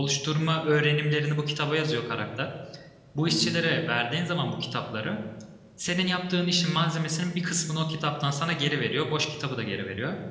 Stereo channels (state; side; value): identical; both; correlation 1.00